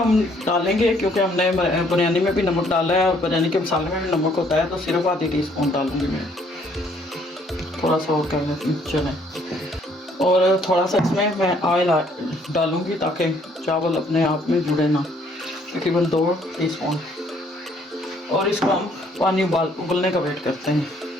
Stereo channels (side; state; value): both; normal; correlation 0.64